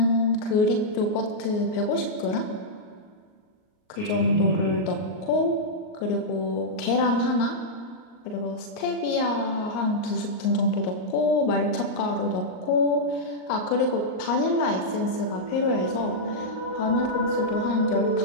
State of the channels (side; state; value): right; late; 38 ms